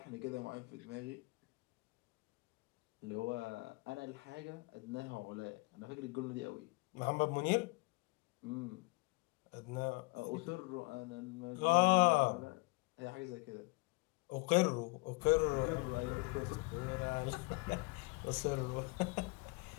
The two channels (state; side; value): quieter; right; 26.3 dB